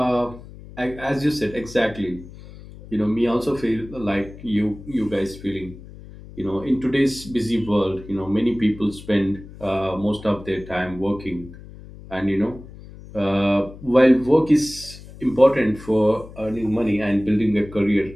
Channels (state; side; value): noise; left; hum, 17 dB below the sound